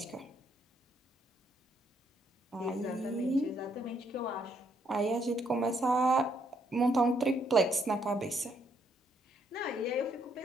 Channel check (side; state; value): both; normal; correlation 0.72